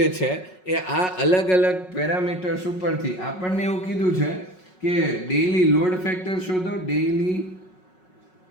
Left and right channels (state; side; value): late; right; 5.4 ms